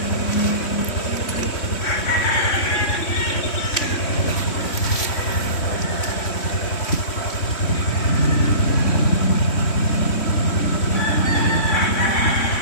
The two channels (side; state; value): right; late; 3.6 ms